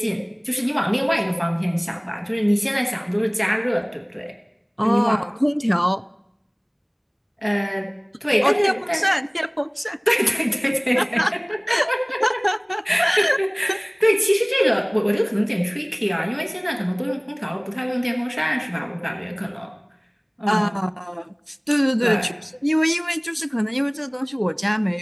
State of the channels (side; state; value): both; identical; correlation 1.00